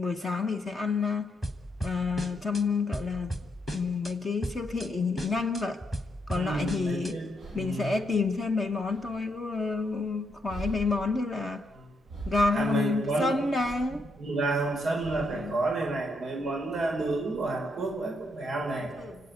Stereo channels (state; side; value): normal; both; correlation 0.78